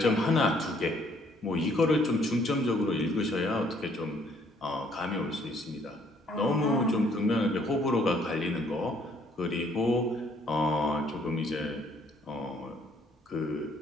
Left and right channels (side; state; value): both; normal; correlation 0.64